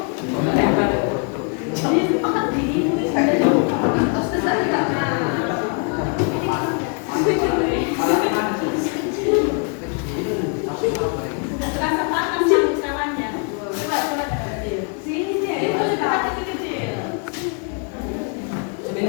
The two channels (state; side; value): quieter; right; 38.4 dB